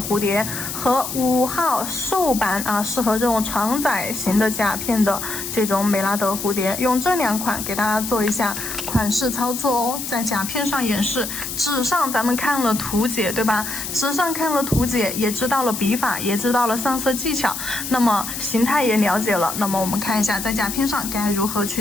蝴蝶和5号瘦版适合这种长窄型的甲片的这种美拉德蝴蝶，用这2款给大家做一下款式操作哦，在甲片上演示，纸上咱们看了图解，对吧？纸上看了图解，也知道了笔法，也知道了上色技巧，那么形态也了解了，那么我们看一下在甲片上该如何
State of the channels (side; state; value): left; noise; hiss, 6 dB below the sound